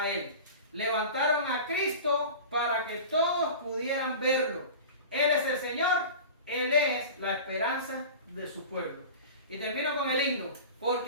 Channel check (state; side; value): inverted; both; correlation -0.35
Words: Él. Levantaron a Cristo para que todos pudieran verlo. Él es el Señor, Él es la esperanza de su pueblo. Y termino con el himno.